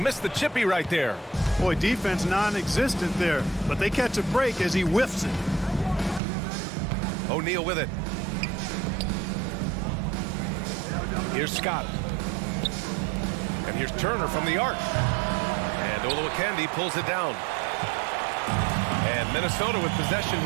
the chippy right there. Boy, defense non-existent there, but they catch a break as he whiffs it. O'Neal with it. Here's Scott. And here's Turner from the arc. And Olowokandi pulls it down. And Minnesota with possession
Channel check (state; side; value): drops out; left; at 6.2 s